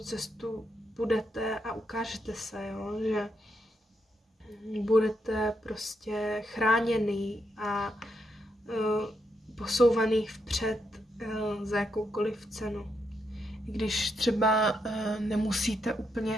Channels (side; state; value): both; normal; correlation 0.81